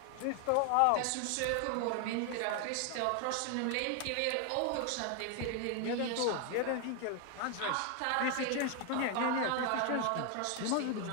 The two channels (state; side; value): different; both; correlation 0.00